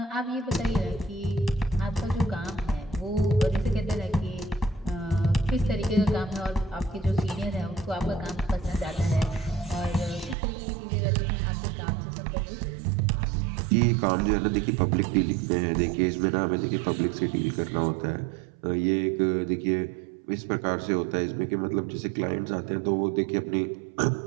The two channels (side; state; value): left; drops out; at 10.4 s